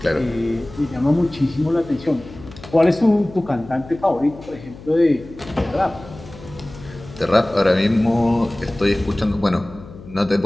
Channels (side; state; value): left; noise; hum, 17 dB below the sound